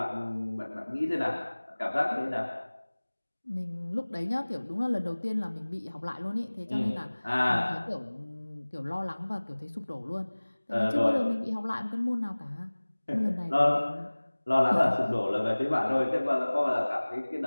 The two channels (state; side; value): inverted; both; correlation -1.00